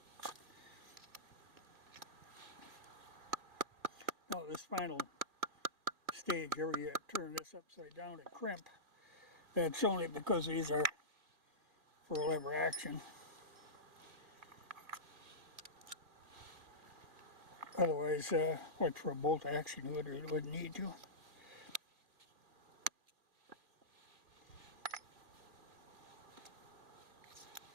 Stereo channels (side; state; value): left; late; 2.4 ms